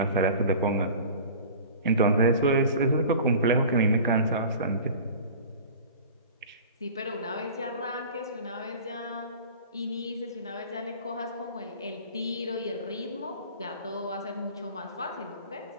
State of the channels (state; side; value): inverted; both; correlation -0.40